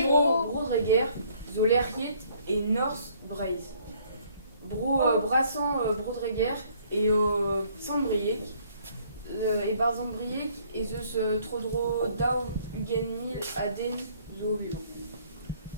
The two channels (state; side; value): inverted; both; correlation -0.62